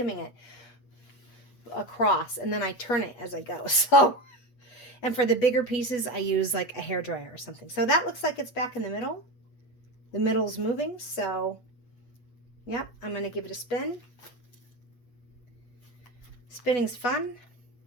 it across, and then I turn it as I go. So, and for the bigger pieces, I use like a hairdryer or something. So that looks like it's back in the middle. The middle's moving, so yep, I'm going to give it a spin. Spinning's fun.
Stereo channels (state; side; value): late; right; 8.3 ms